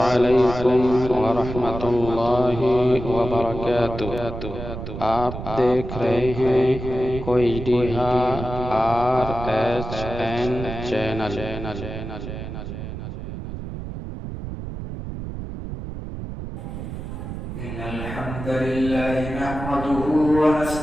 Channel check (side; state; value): right; noise; rumble, 8 dB below the sound